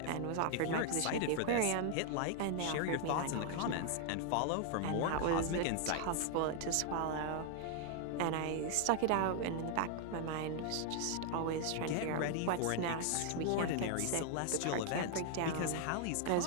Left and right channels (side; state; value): both; different; correlation 0.00